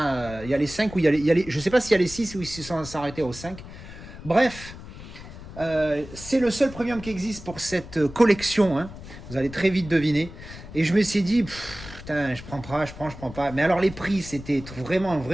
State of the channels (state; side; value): noise; left; rumble, 14 dB below the sound